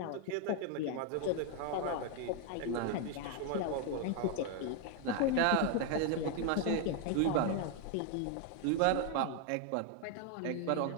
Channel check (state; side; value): different; both; correlation 0.00